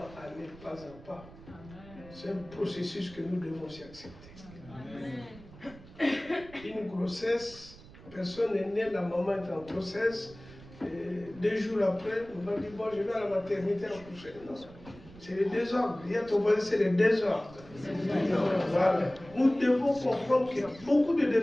à aller pas à pas, c'est un processus que nous devons aussi accepter. Une grossesse, personne n'est né, la maman est en grossesse, et 2 jours après, on va dire, bon, je vais à la maternité accoucher. Non, c'est le désordre. Il y a ton voisin, c'est le désordre. Voilà. Nous devons comprendre qu'il y a beaucoup de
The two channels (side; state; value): right; noise; rumble, 19 dB below the sound